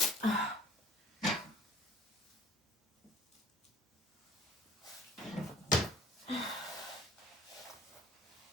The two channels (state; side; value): normal; both; correlation 0.50